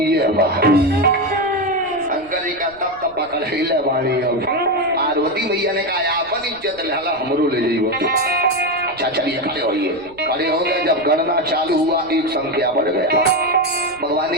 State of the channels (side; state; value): left; noise; rumble, 26 dB below the sound